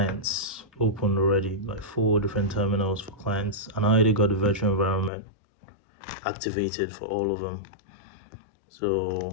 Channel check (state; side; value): drops out; right; at 5.1 s